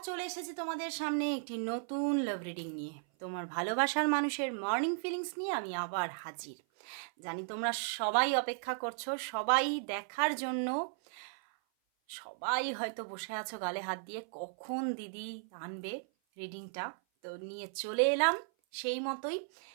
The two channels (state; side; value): silent; left; 54 dB below the other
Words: চলে এসেছি তোমাদের সামনে একটি নতুন লাভ রিডিং নিয়ে। তোমার ভালোবাসার মানুষের মর্নিং ফিলিংস নিয়ে আমি আবার হাজির। জানি তোমরা সবাই অপেক্ষা করছো, সবাই দেখার জন্য। সবাই হয়তো বসে আছো গালে হাত দিয়ে, কখন দিদি আনবে রিডিংটা। তো নিয়ে চলে এলাম সেই মতোই